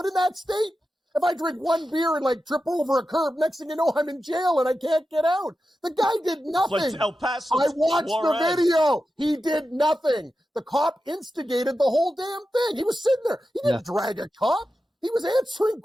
in that state? If I drink one beer and like trip over a curb, next thing you know, I'm in jail and I can't get out. The guy did nothing. El Paso, I watched the video. He did nothing. The cop instigated the whole damn thing. He was sitting there. He didn't drag a cop. He was answering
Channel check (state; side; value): normal; both; correlation 0.91